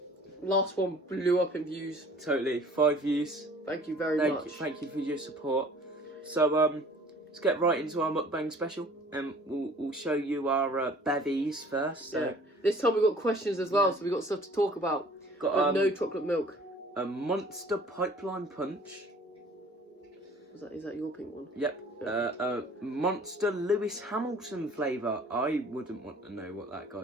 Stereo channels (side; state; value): both; normal; correlation 0.51